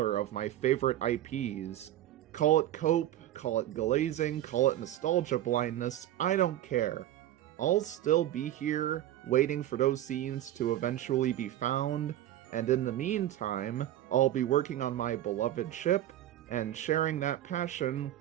of my favorite IPs. Call it cope, call it glazing, call it nostalgia blindness, I don't care. I'll still be here, waiting for those scenes to eventually be found, and in the meantime, I'll be working on my beloved ship, and sharing that passion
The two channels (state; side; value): quieter; left; 13.0 dB